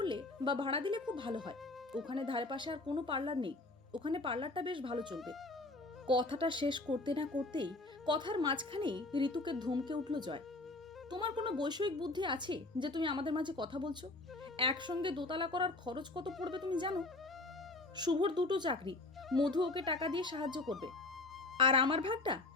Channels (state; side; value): quieter; right; 3.1 dB